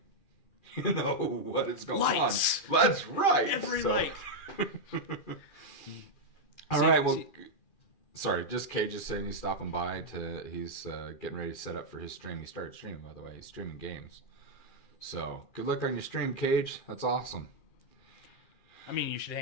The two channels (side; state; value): right; late; 2.4 ms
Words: you know what is going Lights. on. That's right. Every light. All right, well... Sorry, just Cage is saying he's stopping by he's getting ready to set up for his stream. He started streaming, by the way. He's streaming games. So, good luck on your stream, Cage. That's awesome. I mean, you should